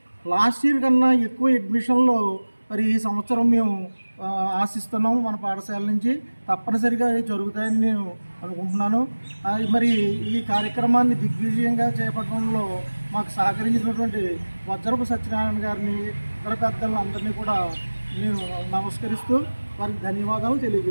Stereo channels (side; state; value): both; inverted; correlation -1.00